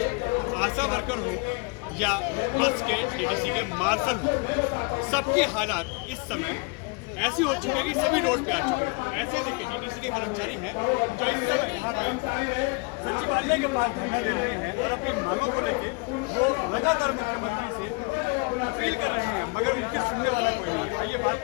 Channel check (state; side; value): quieter; right; 30.6 dB